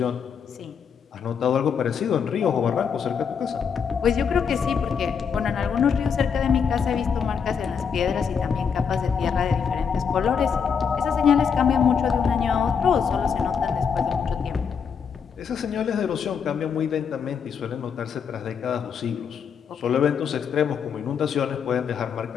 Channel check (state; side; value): quieter; right; 6.7 dB